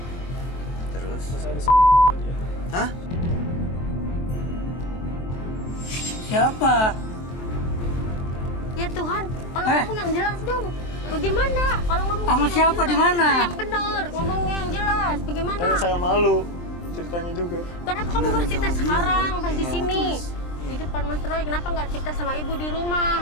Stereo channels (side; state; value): right; late; 23 ms